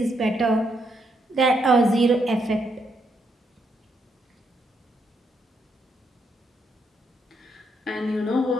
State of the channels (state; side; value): normal; both; correlation 0.77